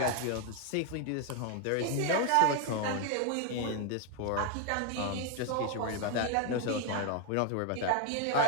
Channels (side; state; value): both; different; correlation 0.01